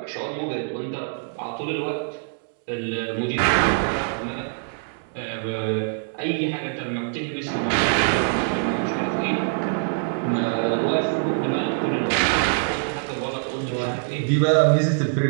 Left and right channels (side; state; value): left; silent; digital silence